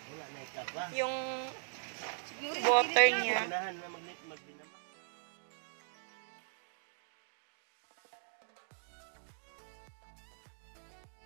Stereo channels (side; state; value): left; silent; digital silence